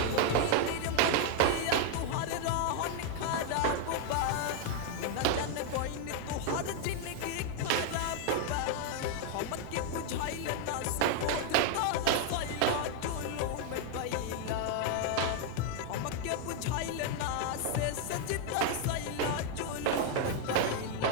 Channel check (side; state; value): both; different; correlation 0.00